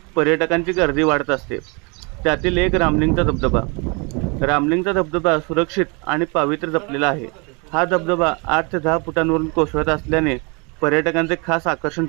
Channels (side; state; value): left; quieter; 31.3 dB